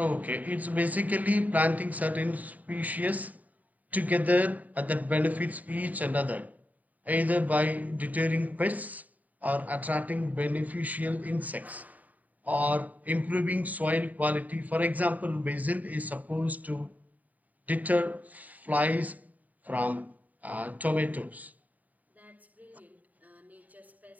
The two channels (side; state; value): left; late; 0.075 ms